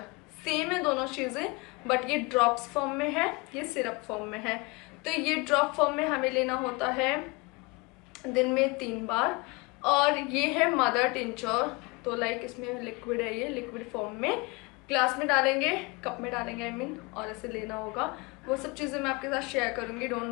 सेम है दोनों चीज़ें, बट ये ड्रॉप्स फॉर्म में है, ये सिरप फॉर्म में है। तो ये ड्रॉप फॉर्म में हमें लेना होता है दिन में 3 बार। और ये है मदर टिंचर, तो लाइक इसमें लिक्विड है, ये लिक्विड फॉर्म में ग्लास में डालेंगे, कप में डालेंगे आई मीन, और ऐसे लेना होगा। वो सब चीज़ें मैं आपके साथ शेयर करूँगी,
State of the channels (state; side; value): quieter; right; 27.1 dB